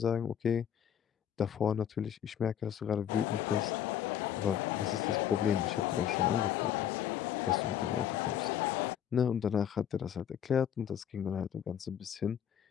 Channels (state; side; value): quieter; right; 9.6 dB